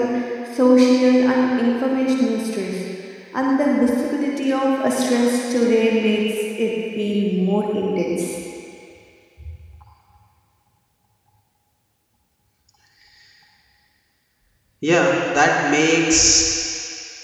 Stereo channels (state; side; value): identical; both; correlation 1.00